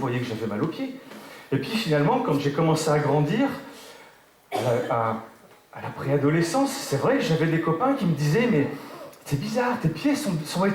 que j'avais mal aux pieds. Et puis finalement, quand j'ai commencé à grandir, à la préadolescence, c'est vrai que j'avais des copains qui me disaient « Mais c'est bizarre, tes pieds sont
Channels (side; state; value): both; identical; correlation 1.00